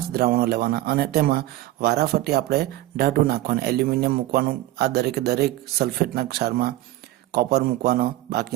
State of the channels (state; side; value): quieter; left; 16.1 dB